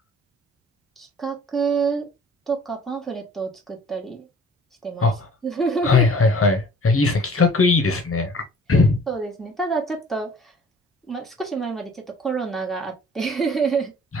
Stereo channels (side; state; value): both; normal; correlation 0.51